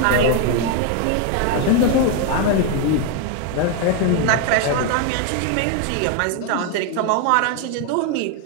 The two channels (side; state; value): both; different; correlation 0.01